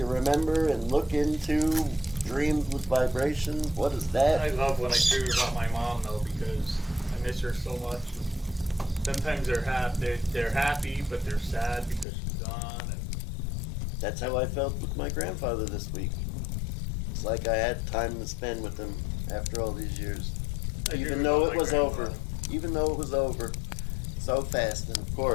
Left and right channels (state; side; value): drops out; right; at 12.1 s